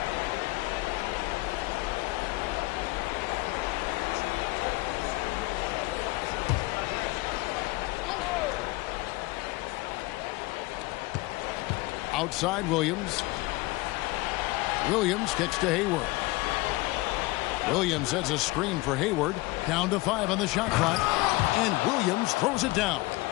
Outside Williams. Williams kicks to Hayward. Williams sets a screen for Hayward. Down to 5 on the shot clock. And Williams throws it down.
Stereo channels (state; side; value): quieter; right; 21.7 dB